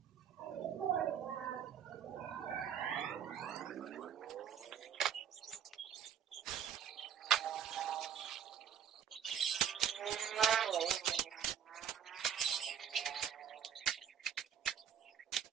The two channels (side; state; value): left; quieter; 8.6 dB